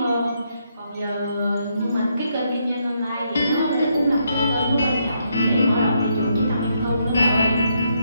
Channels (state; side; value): inverted; both; correlation -0.76